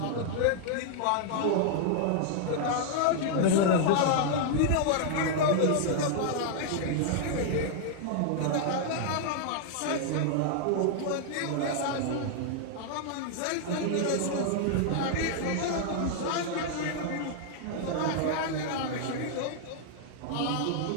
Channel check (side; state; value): both; different; correlation -0.01